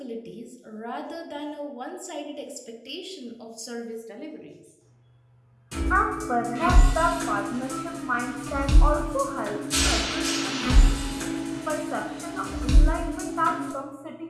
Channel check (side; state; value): both; identical; correlation 1.00